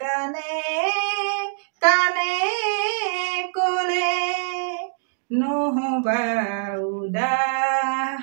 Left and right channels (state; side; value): silent; left; digital silence